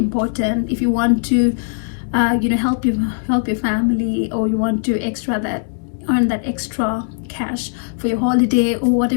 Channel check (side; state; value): right; silent; digital silence